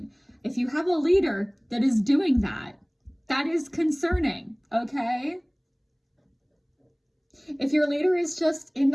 If you have a leader that is doing that, that is concerning, okay? If your leader is just in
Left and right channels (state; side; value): identical; both; correlation 1.00